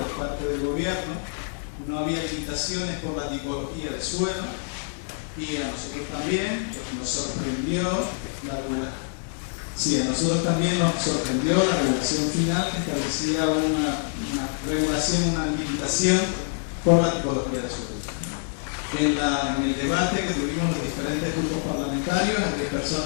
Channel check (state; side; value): silent; right; 61 dB below the other